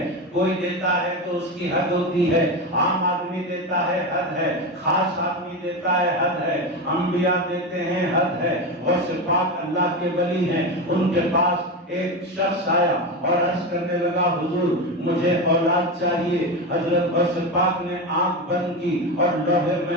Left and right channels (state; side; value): normal; both; correlation 0.18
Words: کوئی دیتا ہے تو اس کی حد ہوتی ہے، عام آدمی دیتا ہے حد ہے، خاص آدمی دیتا ہے حد ہے، انبیاء دیتے ہیں حد ہے۔ غوث پاک اللہ کے ولی ہیں، ان کے پاس ایک شخص آیا اور عرض کرنے لگا حضور مجھے اولاد چاہیے۔ حضرت غوث پاک نے آنکھ بند کی اور لوح